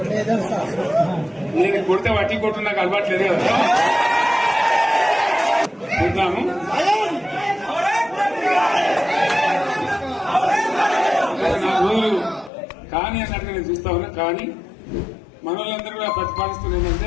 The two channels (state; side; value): drops out; right; at 12.5 s